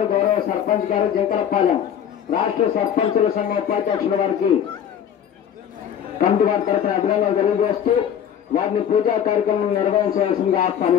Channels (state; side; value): quieter; right; 9.0 dB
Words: గౌరవ సర్పంచ్ గారు జంకలపాలెం రాష్ట్ర సర్పంచుల సంఘ ఉపాధ్యక్షుల వారికి కమిటీ వారి తరఫున అభినందనలు తెలియజేస్తూ వారిని పూజా కార్యక్రమం నిర్వహించవలసిందిగా